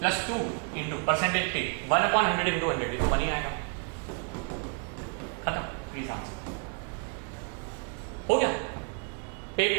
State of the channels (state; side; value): quieter; left; 36.3 dB